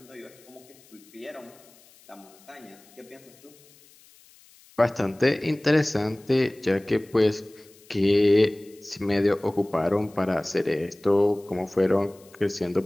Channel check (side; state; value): left; noise; hiss, 27 dB below the sound